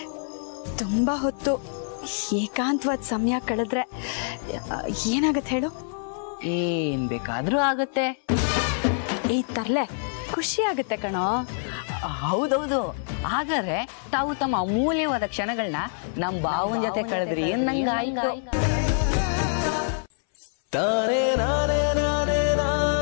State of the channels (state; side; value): silent; right; 61 dB below the other